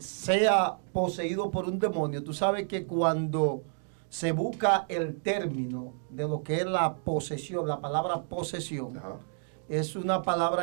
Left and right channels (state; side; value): silent; left; digital silence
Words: poseído por un demonio. Tú sabes que cuando se busca el término de lo que es la posesión, la palabra posesión, Ajá. es una